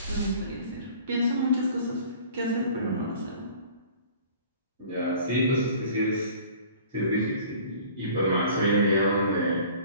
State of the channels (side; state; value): both; inverted; correlation -0.48